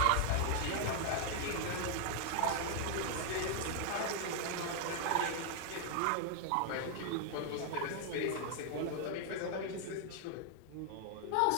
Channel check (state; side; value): different; both; correlation 0.00